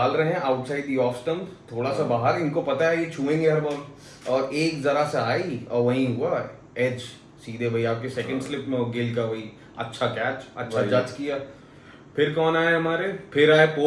रहे हैं आउटसाइड दी ऑफ स्टंप, थोड़ा सा बाहर, इनको पता है ये छुएंगे हर बॉल, और एक जरा सा आई और वहीं हुआ एज सीधे भाई आपके सेकंड स्लिप में गिल का वही अच्छा कैच, अच्छा जज किया। फिर कौन आया हमारे, फिर आए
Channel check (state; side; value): identical; both; correlation 1.00